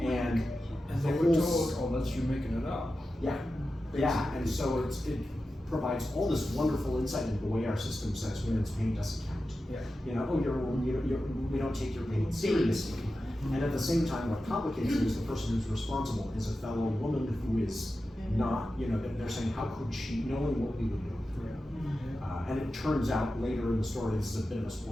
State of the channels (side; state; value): both; normal; correlation 0.92